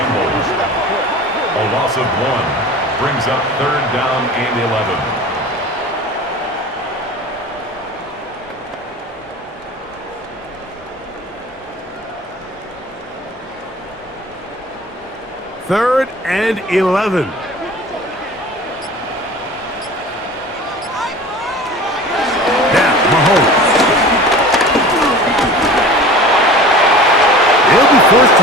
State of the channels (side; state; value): both; normal; correlation 0.39